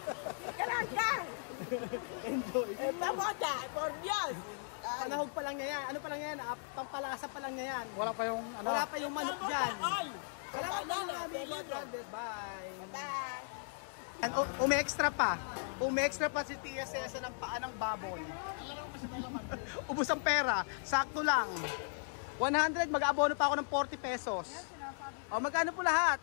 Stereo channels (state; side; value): silent; right; 53 dB below the other